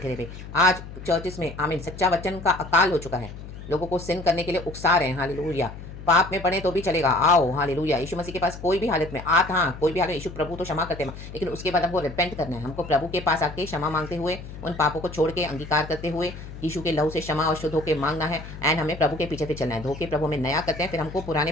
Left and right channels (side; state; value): left; noise; hum, 12 dB below the sound